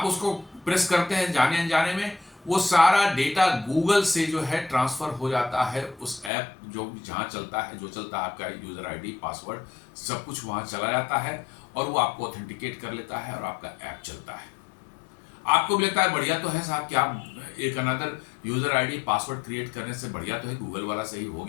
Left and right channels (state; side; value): drops out; right; at 6.3 s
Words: उसको प्रेस करते हैं जाने अनजाने में, वो सारा डेटा गूगल से जो है ट्रांसफर हो जाता है उस ऐप जो जहां चलता है, जो चलता है आपका यूजर आईडी पासवर्ड सब कुछ वहां चला जाता है और वो आपको ऑथेंटिकेट कर लेता है और आपका ऐप चलता है। आपको भी लगता है बढ़िया तो है साहब, क्या एक another user ID password create करने से बढ़िया तो है, गूगल वाला सही हो